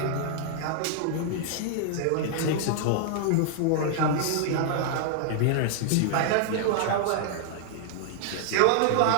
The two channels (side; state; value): both; different; correlation -0.01